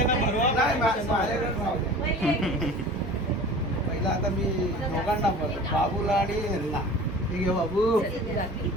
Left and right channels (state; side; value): normal; both; correlation 0.40